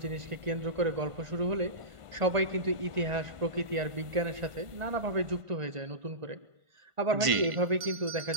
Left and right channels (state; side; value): late; left; 1.5 ms